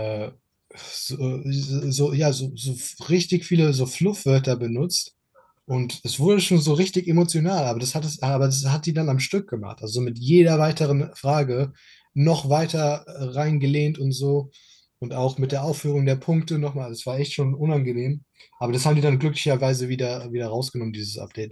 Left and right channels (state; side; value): identical; both; correlation 1.00